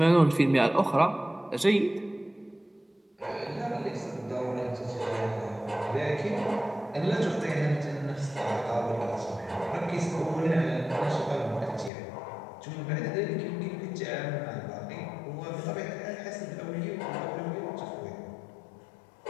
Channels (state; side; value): drops out; right; at 11.9 s